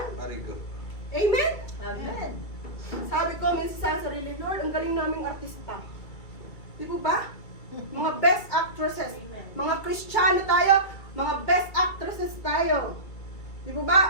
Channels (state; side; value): late; right; 2.3 ms